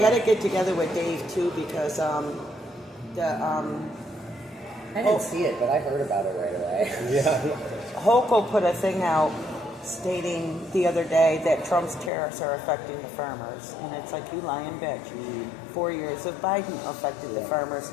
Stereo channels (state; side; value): drops out; right; at 12.1 s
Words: got to get together with Dave too because I didn't see it, but I heard about it right away. Yeah. Hochul put a thing out stating the other day that Trump's tariffs are affecting the farmers. And it's like, you lying bitch. 4 years of Biden affected the farmers.